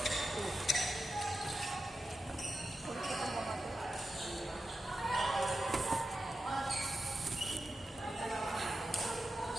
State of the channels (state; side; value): normal; both; correlation 0.91